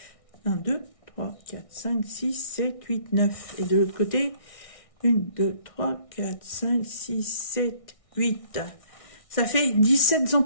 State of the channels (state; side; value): late; right; 1.6 ms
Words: 1, 2, 3, 4, 5, 6, 7, 8, 9. Et de l'autre côté, 1, 2, 3, 4, 5, 6, 7, 8. Ça fait 17